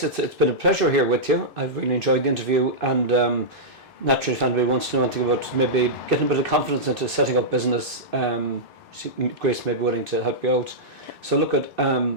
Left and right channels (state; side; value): normal; both; correlation -0.11